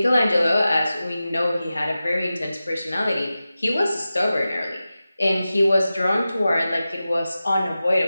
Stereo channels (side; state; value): both; inverted; correlation -0.94